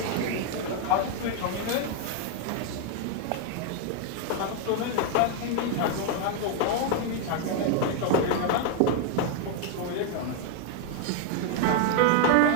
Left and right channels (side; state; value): both; different; correlation 0.00